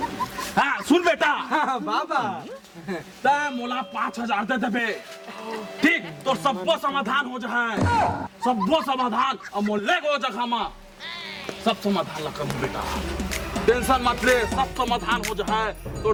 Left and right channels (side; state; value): both; identical; correlation 1.00